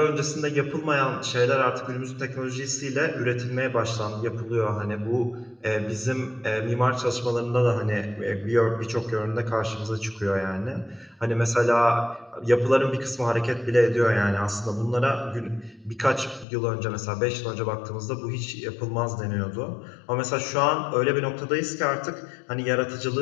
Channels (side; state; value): right; drops out; at 16.4 s